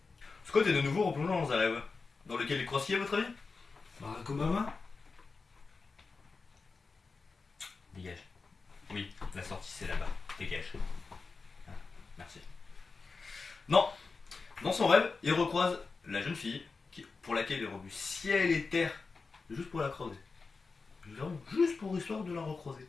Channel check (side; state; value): right; quieter; 4.3 dB